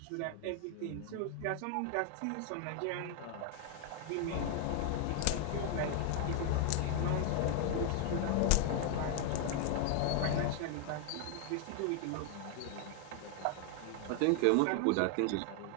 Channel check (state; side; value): different; both; correlation 0.00